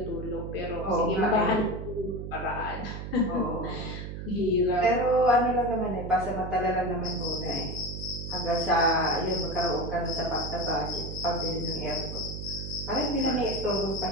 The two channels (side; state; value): right; noise; hum, 7 dB below the sound